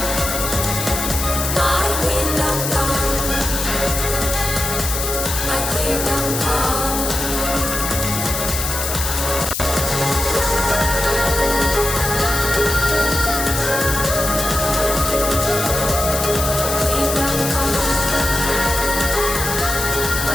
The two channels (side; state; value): left; noise; hiss, 3 dB below the sound